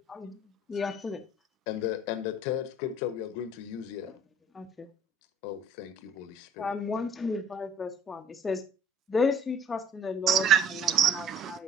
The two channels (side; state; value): both; normal; correlation 0.51